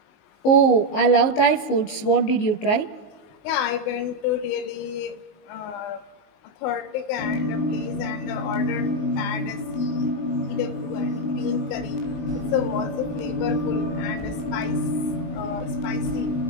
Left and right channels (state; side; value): late; right; 19 ms